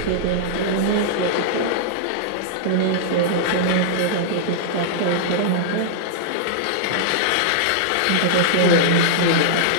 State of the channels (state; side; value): different; both; correlation -0.02